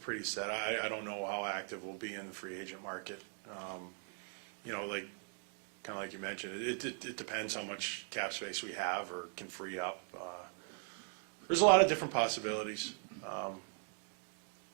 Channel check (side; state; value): left; silent; 51 dB below the other